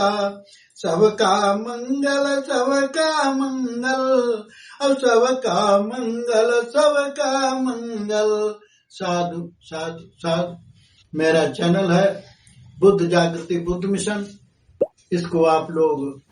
सबका मंगल सबका मंगल, अब सबका मंगल सबका मंगल। साधु साधु साधु। मेरा चैनल है बुद्ध जागृति बुद्ध मिशन, इसको आप लोग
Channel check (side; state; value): both; identical; correlation 1.00